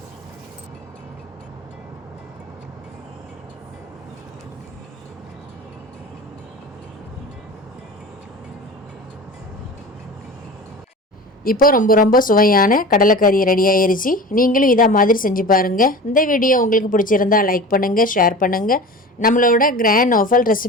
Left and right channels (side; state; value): both; normal; correlation 0.34